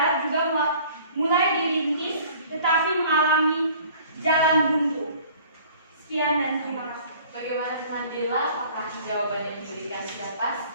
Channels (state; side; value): inverted; both; correlation -0.51